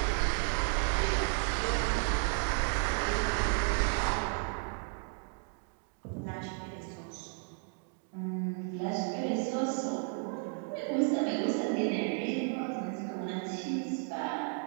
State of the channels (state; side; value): quieter; left; 39.6 dB